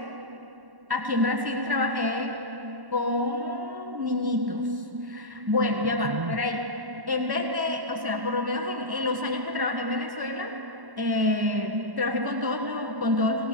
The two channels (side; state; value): left; late; 1.1 ms